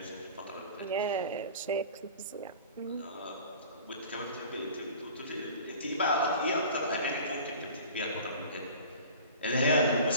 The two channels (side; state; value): both; inverted; correlation -0.41